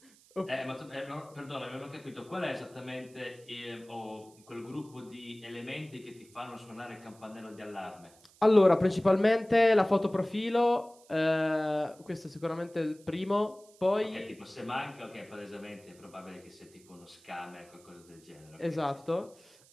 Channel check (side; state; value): right; noise; hiss, 27 dB below the sound